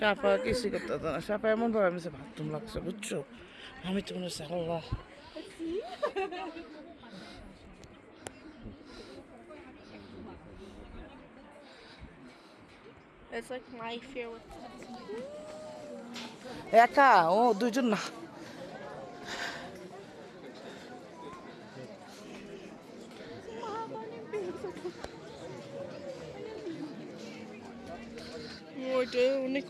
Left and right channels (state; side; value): identical; both; correlation 1.00